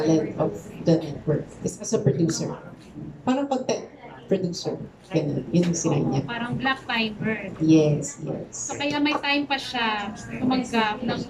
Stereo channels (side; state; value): both; identical; correlation 1.00